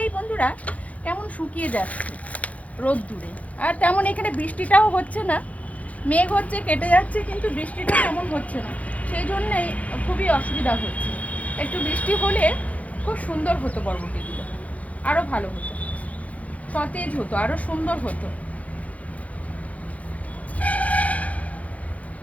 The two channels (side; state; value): right; late; 0.068 ms